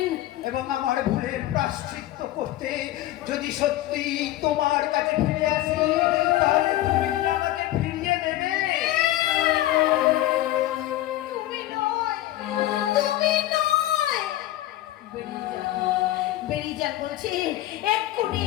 এবং আমার ভুলের প্রায়শ্চিত্ত করতে যদি সত্যি তোমার কাছে ফিরে আসি, তাহলে তুমি কি আমাকে ফিরিয়ে দেবে? তুমি নয়, তুমি নয়, বেরিয়ে যান বলছি, এক্ষুনি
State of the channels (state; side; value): quieter; right; 15.1 dB